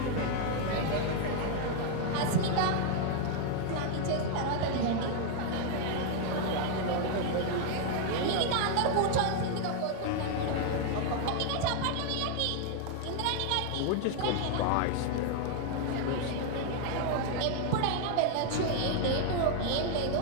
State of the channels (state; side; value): different; both; correlation 0.00